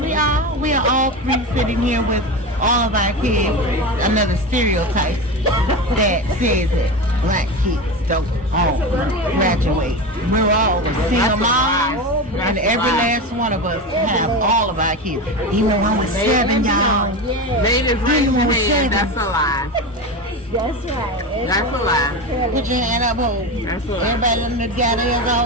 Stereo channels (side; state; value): both; normal; correlation 0.23